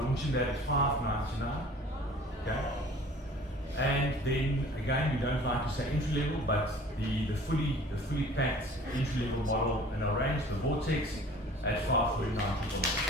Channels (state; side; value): normal; both; correlation 0.47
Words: launching that at $599. Okay. And then again, we don't like to say entry level, but the fully packed entry level model in our range, the Vortex, at $549.